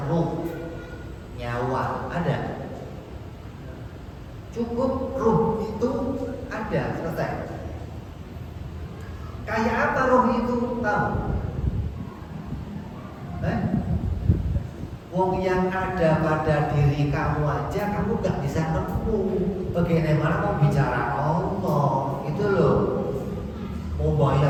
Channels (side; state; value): both; identical; correlation 1.00